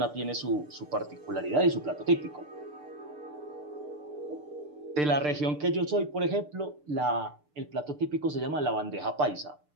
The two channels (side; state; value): left; late; 6.8 ms